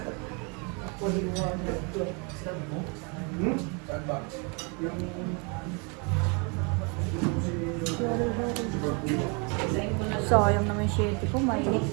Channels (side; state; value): left; quieter; 33.3 dB